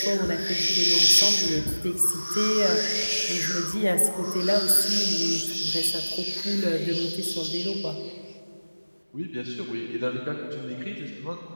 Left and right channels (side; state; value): both; inverted; correlation -1.00